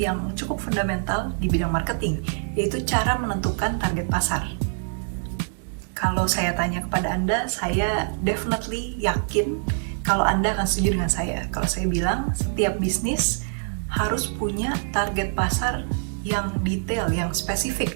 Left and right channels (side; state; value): left; silent; digital silence